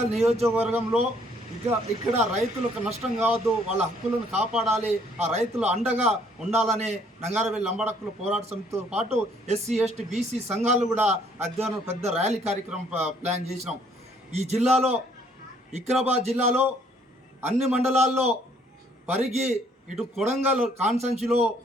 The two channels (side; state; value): both; normal; correlation 0.63